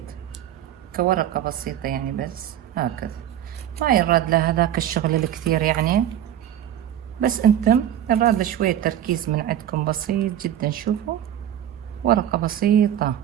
كورقة بسيطة، يعني بس هكذا، ما يراد له هذاك الشغل الكثير يعني، بس انتم يراد له شوية تركيز من عندكم بسيط جدا. شوفوا ورقة بسيطة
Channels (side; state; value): left; quieter; 11.0 dB